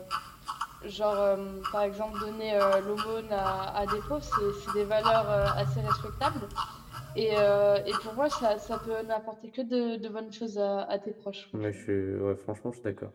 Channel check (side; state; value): both; identical; correlation 1.00